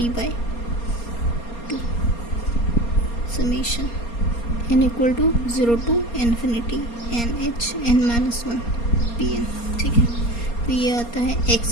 summation n equal to 0 to infinity n h n minus 1 p n. ठीक है, तो ये आता है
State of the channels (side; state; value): right; late; 4.3 ms